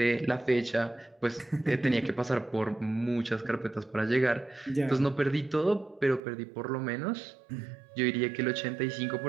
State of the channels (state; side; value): drops out; left; at 6.2 s